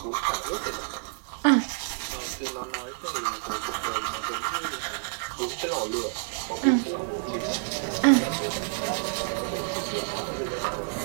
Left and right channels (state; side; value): silent; left; digital silence